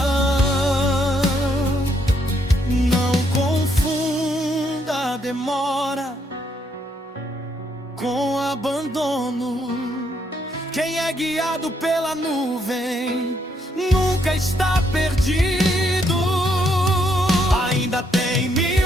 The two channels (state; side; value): normal; both; correlation 0.74